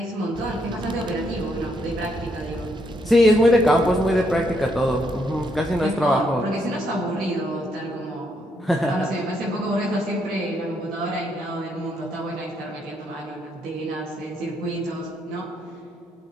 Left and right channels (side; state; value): both; normal; correlation 0.75